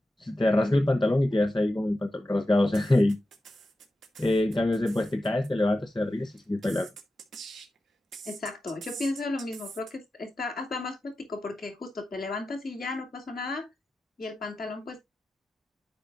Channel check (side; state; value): both; normal; correlation 0.92